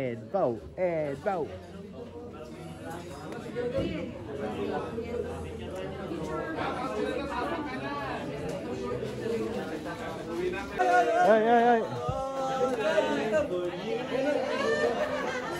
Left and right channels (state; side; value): identical; both; correlation 1.00